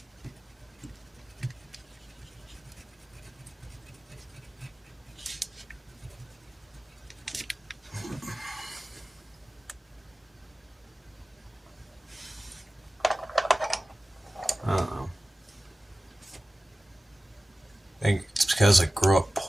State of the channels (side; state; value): both; normal; correlation 0.96